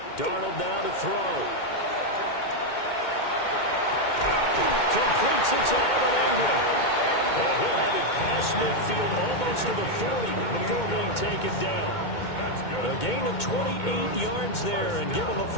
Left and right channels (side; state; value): right; late; 2.2 ms